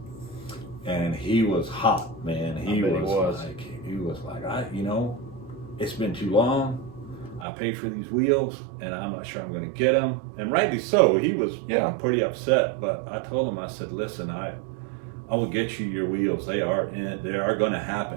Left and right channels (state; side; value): drops out; left; at 7.5 s